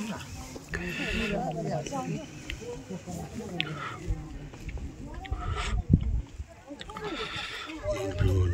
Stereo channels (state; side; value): identical; both; correlation 1.00